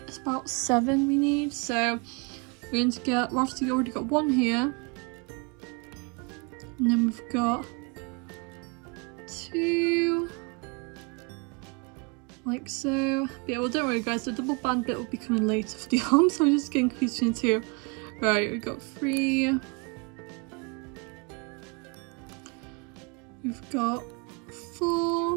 it's about 7 we need. So we're going to get, we've obviously already got one here, and then we've got 2, like so. But yeah, well, don't worry guys, the double band bit will be coming later for the arms, so I'm just getting confused between 2. Right, we've got 3. We've got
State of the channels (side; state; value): left; quieter; 31.5 dB